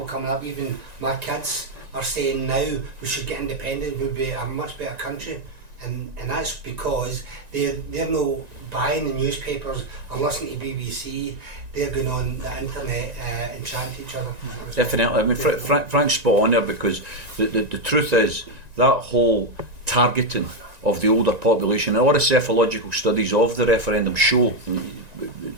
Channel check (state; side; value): late; left; 1.9 ms